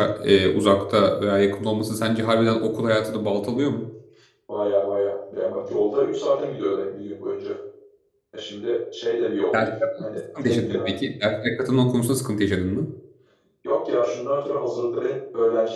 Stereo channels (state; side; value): identical; both; correlation 1.00